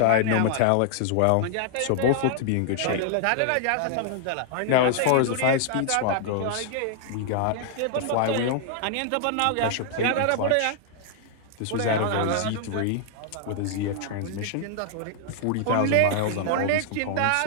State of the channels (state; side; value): different; both; correlation 0.00